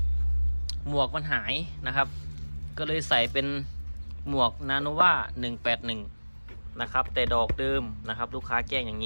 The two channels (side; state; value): both; inverted; correlation -1.00